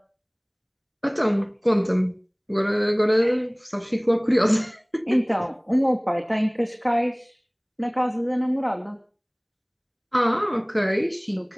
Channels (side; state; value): both; identical; correlation 1.00